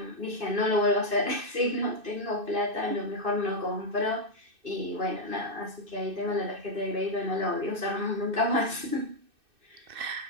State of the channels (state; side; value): late; left; 2.6 ms